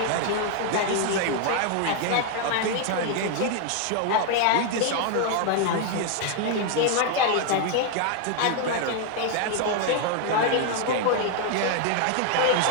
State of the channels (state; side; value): different; both; correlation 0.00